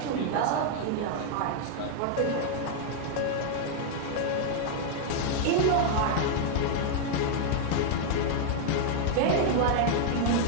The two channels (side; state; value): both; different; correlation -0.01